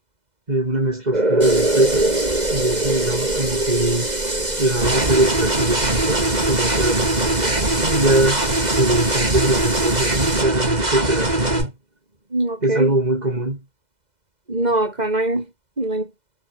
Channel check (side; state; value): left; late; 2.0 ms